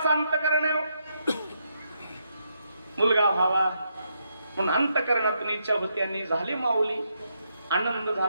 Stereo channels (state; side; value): inverted; both; correlation -0.79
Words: अंतकरण आहे. मुलगा व्हावा म्हणून अंतकरणातून इच्छा होती आणि झाली माऊली. आनंद